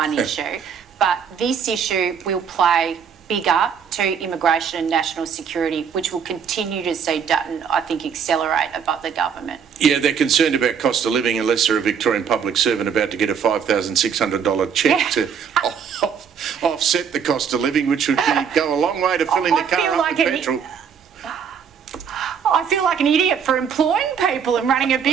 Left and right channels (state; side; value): quieter; left; 7.1 dB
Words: issue. But this issue will play bigger to immigration and national security, which will continue to see Dutton, I think, accelerate above the government. Yeah, they're concerned about cost of living unless they're a Victorian public servant about to get a $5,600 cheque to offset the cost of living, which would go a long way to filling the car up with petrol. I feel like an idiot for employing people and running a